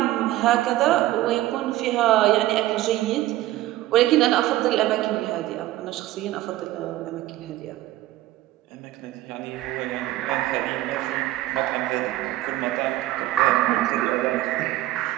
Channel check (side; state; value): left; quieter; 15.5 dB